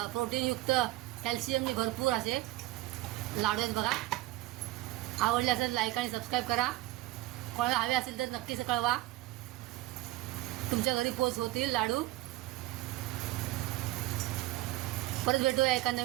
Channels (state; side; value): quieter; left; 17.7 dB